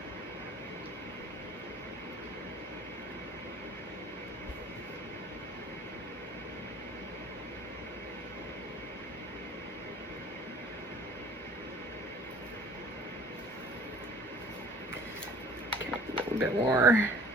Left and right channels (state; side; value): normal; both; correlation 0.50